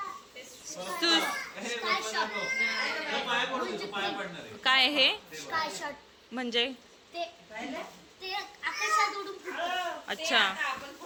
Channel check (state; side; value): identical; both; correlation 1.00